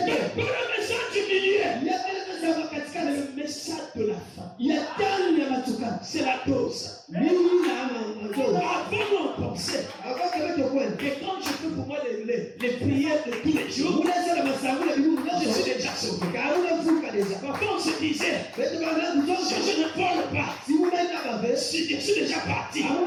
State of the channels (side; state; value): both; identical; correlation 1.00